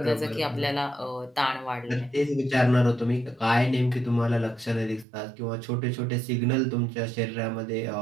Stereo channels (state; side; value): drops out; left; at 5.1 s